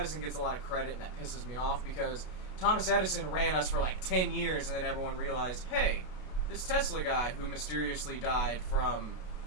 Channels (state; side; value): late; right; 33 ms